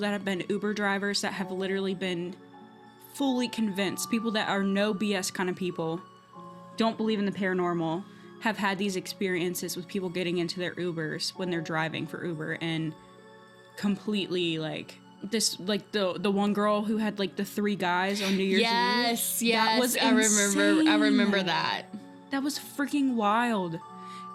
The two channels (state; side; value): identical; both; correlation 1.00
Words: have been Uber drivers that have literally been fully convinced, people that are no BS kind of people, don't believe in the paranormal, have had these experiences with people getting into their Ubers when they're driving for Uber and completely like this, like the one girl who had like the 3 guys on New Year's Eve. That was I remember that. That was freaking wild.